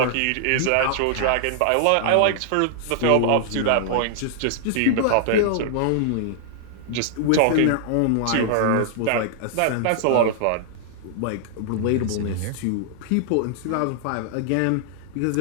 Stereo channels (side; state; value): both; different; correlation -0.01